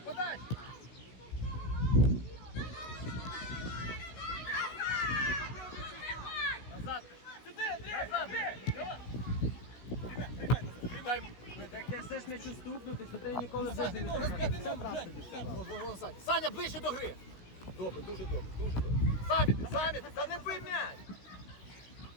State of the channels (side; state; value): right; late; 16 ms